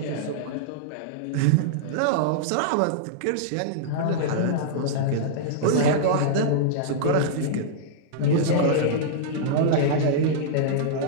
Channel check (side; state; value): both; different; correlation -0.02